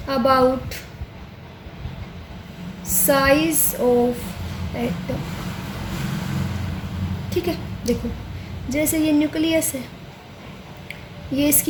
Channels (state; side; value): identical; both; correlation 1.00